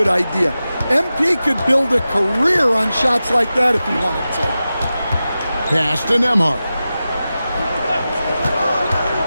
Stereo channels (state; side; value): inverted; both; correlation -0.93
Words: idea. MP could build a career on shots like that if he wanted to. Pass to Nembhard.